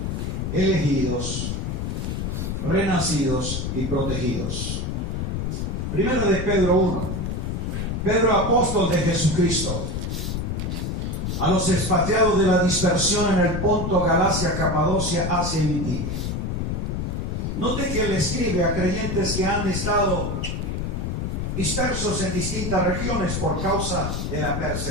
elegidos, renacidos y protegidos. Primero de Pedro 1. Pedro, apóstol de Jesucristo, a los expatriados de la dispersión en el Ponto, Galacia, Capadocia, Asia y Bitinia. Note que él escribe a creyentes que han estado dispersos en distintas regiones por causa de la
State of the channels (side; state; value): left; noise; rumble, 2 dB below the sound